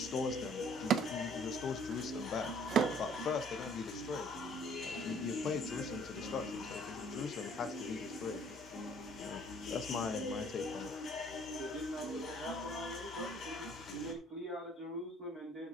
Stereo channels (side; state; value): both; normal; correlation 0.58